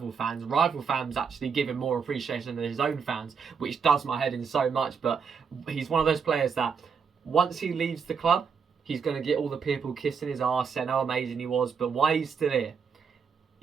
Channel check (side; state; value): left; quieter; 6.1 dB